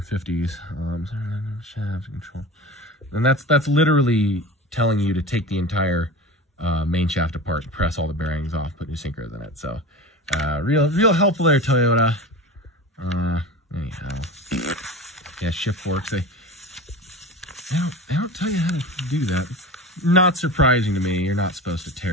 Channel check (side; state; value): both; normal; correlation 0.31